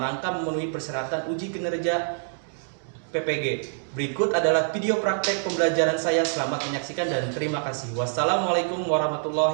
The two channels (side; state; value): left; silent; digital silence